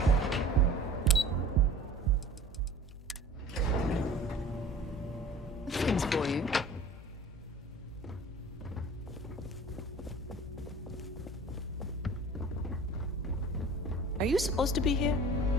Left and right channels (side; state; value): both; normal; correlation 0.43